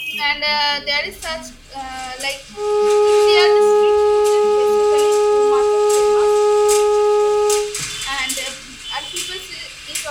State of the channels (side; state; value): both; identical; correlation 1.00